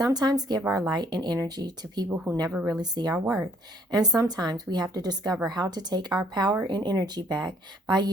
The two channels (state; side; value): normal; both; correlation 0.61